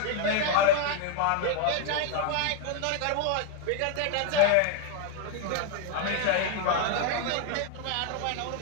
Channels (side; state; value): both; different; correlation 0.01